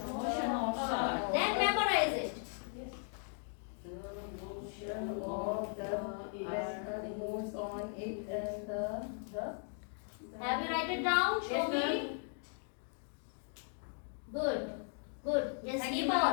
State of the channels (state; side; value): silent; right; 53 dB below the other